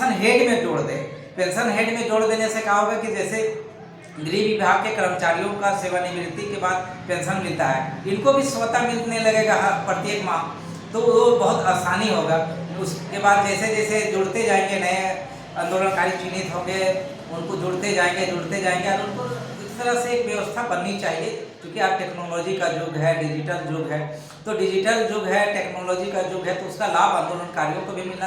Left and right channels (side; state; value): both; identical; correlation 1.00